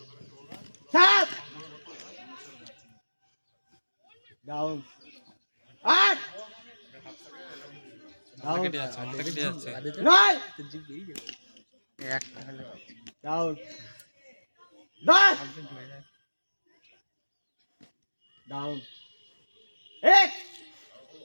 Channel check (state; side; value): inverted; both; correlation -1.00